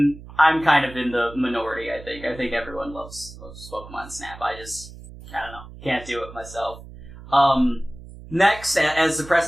kind of in the minority. I think everyone loves Pokemon Snap. I don't know, can't do it myself. Next, as the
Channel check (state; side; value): noise; right; hum, 16 dB below the sound